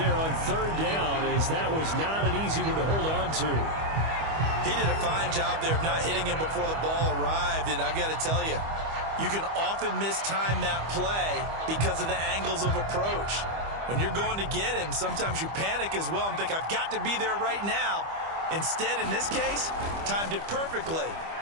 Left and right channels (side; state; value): left; late; 25 ms